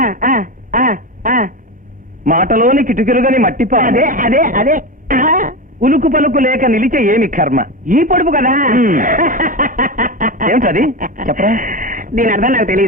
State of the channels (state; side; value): normal; both; correlation 0.20